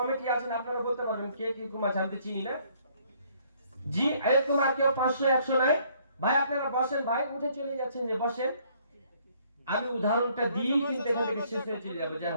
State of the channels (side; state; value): both; inverted; correlation -0.64